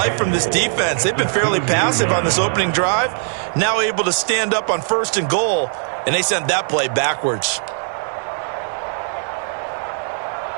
from this defense. They've been fairly passive on this opening drive. Now able to stand up on first and goal, and they sent that play backwards.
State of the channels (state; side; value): silent; left; 60 dB below the other